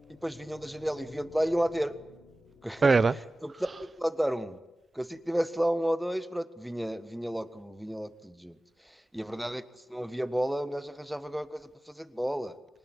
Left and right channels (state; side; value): normal; both; correlation 0.97